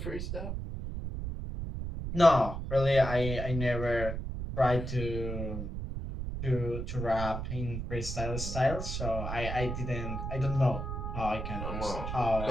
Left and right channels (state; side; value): noise; right; rumble, 5 dB below the sound